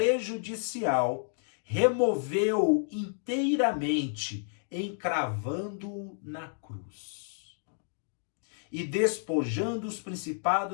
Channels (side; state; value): right; silent; digital silence